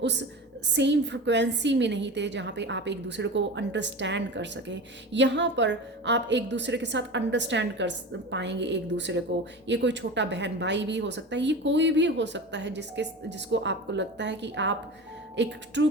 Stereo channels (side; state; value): both; normal; correlation 0.30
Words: सेम फ्रिक्वेंसी में नहीं थे जहाँ पे आप एक दूसरे को अंडरस्टैंड कर सकें। यहाँ पर आप एक दूसरे के साथ अंडरस्टैंड कर पाएंगे एक दूसरे को। ये कोई छोटा बहन भाई भी हो सकता है, ये कोई भी हो सकता है जिसको आपको लगता है कि आप एक ट्रू